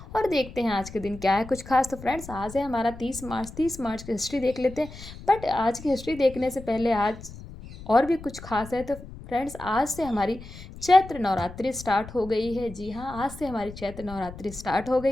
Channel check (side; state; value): left; noise; rumble, 15 dB below the sound